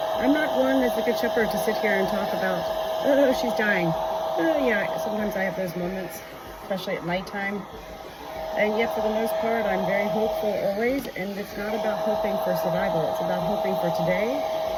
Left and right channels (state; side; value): identical; both; correlation 1.00